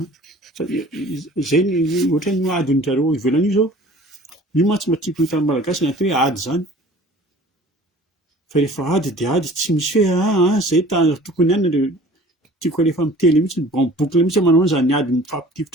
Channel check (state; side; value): normal; both; correlation 0.47